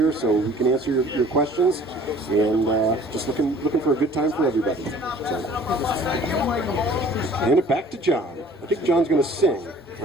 so we can answer your questions. And just looking for a good time for everybody. So, hand it back to John. I think John's going to sing,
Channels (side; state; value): both; normal; correlation 0.51